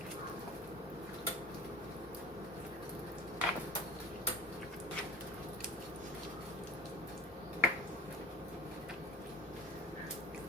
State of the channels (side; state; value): both; normal; correlation 0.40